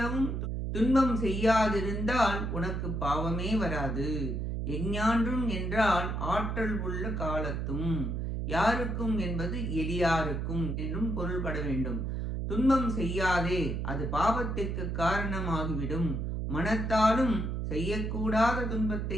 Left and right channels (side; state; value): right; noise; hum, 2 dB below the sound